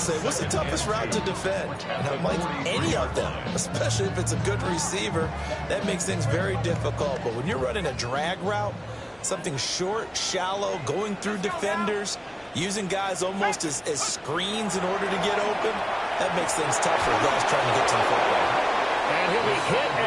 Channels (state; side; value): identical; both; correlation 1.00